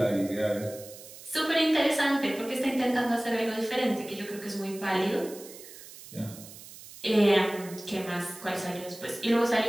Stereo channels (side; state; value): right; noise; hiss, 17 dB below the sound